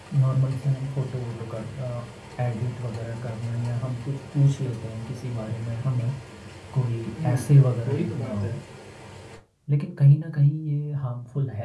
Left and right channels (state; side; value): identical; both; correlation 1.00